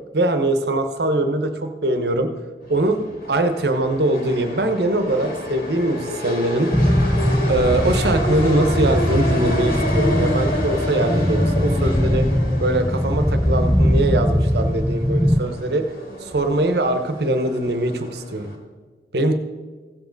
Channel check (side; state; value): both; normal; correlation 0.59